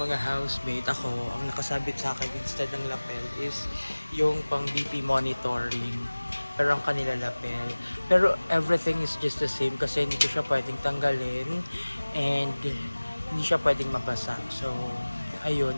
housemate, ako, ang nakasabit sa akin instead ng lapel is yung pang BP monitoring. Pero ang kanila lapel. Pero everything is just the same kasi hindi ko siya pwedeng tanggalin and hindi siya pwedeng mabasa. So, ayun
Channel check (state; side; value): inverted; both; correlation -1.00